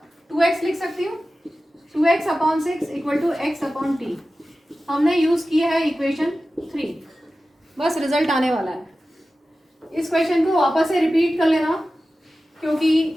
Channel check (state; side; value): normal; both; correlation 0.94